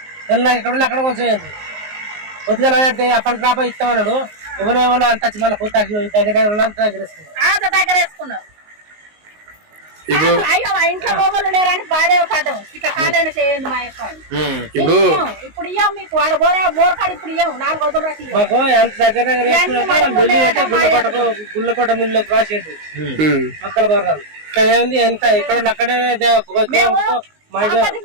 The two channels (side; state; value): left; late; 19 ms